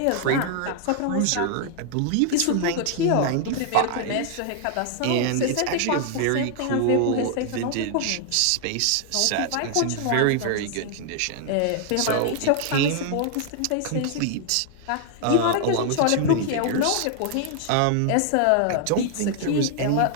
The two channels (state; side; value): different; both; correlation 0.00